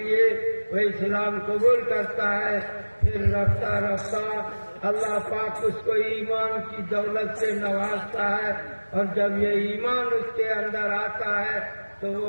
وہ اسلام قبول کرتا ہے. پھر رفتہ رفتہ اللہ پاک اس کو ایمان کی دولت سے نوازتا ہے، اور جب یہ ایمان اس کے اندر آتا ہے تو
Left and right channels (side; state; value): both; inverted; correlation -1.00